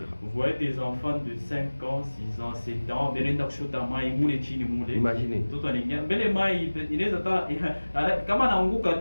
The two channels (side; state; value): both; inverted; correlation -1.00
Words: vous voyez des enfants de 5 ans, 6 ans, 7 ans, imaginez tout en Indien. Mais les mailles, il est à comment on a un goût à